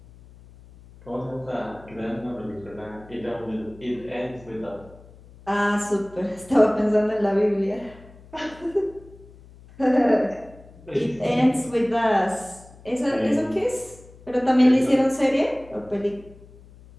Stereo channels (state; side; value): noise; left; hum, 22 dB below the sound